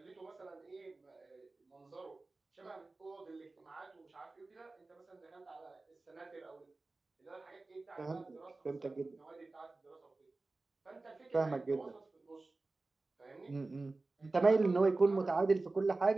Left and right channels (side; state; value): left; quieter; 3.4 dB